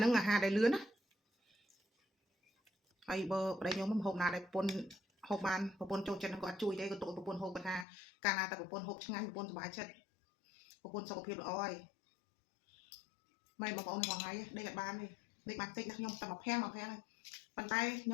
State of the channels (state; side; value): drops out; right; at 7.9 s